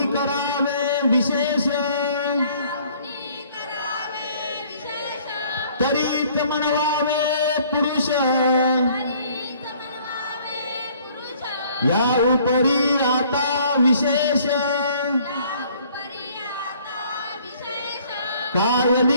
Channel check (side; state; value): both; inverted; correlation -0.58